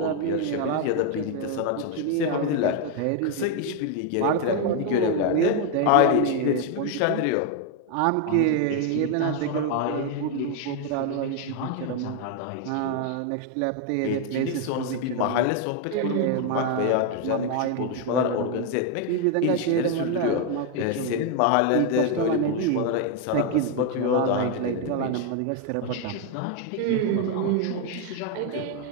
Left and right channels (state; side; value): different; both; correlation 0.01